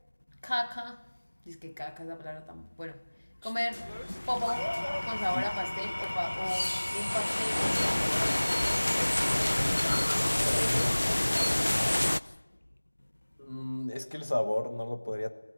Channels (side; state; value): both; inverted; correlation -1.00